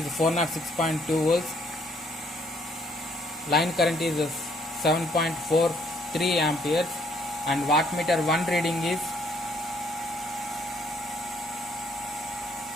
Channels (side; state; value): both; normal; correlation 0.66